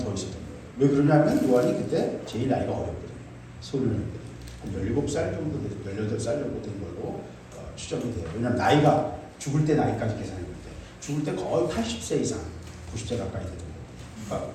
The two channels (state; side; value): identical; both; correlation 1.00